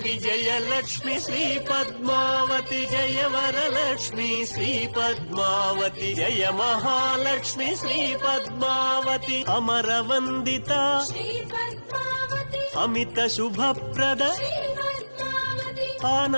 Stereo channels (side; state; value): both; inverted; correlation -1.00